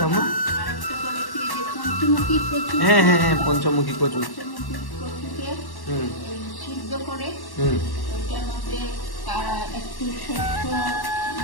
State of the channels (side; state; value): right; late; 1.1 ms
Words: ঠাম্মা? আরেকটা করেছি এই যে পঞ্চমুখী কচু। হ্যাঁ হ্যাঁ হ্যাঁ, পঞ্চমুখী কচু। পঞ্চমুখী কচুকে হুম সিদ্ধ করে হুম ওইটার মধ্যে একটু শস্য